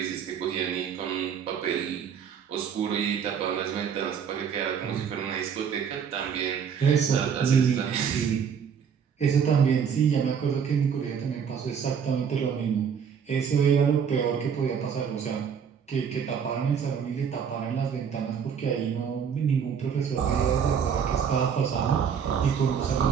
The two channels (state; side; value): quieter; left; 7.3 dB